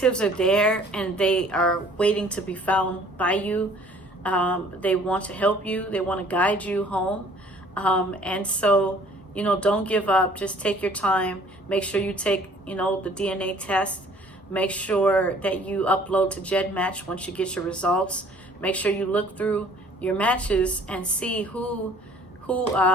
are there and they are waiting to be found by you. They want to help you. They want to guide you home. And so, you know, don't give up. Just take your time. Make sure you take, you know, the DNA test. Make sure that you upload to GEDmatch once you get your results. Make sure you look through your matches and see who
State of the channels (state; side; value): normal; both; correlation 0.55